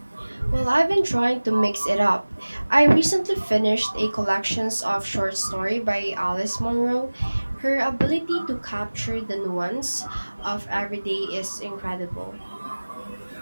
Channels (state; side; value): inverted; both; correlation -1.00